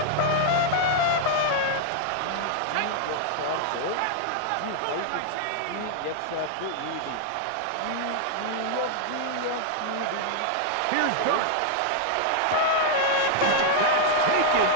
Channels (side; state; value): both; different; correlation 0.00